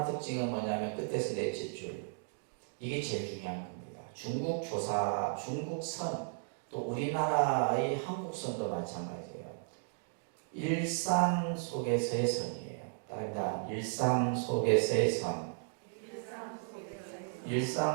특징은 뭐냐면 끝에서 넷째 줄. 이게 제일 중요한 겁니다. 중국선, 또 우리나라의 한국선도 마찬가지예요. 일상 속에서의 선이에요. 다릅니다. 일상 속에서의 선.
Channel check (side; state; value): left; silent; digital silence